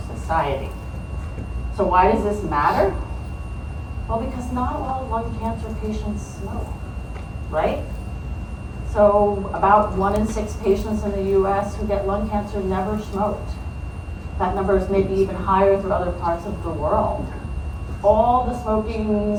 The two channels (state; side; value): identical; both; correlation 1.00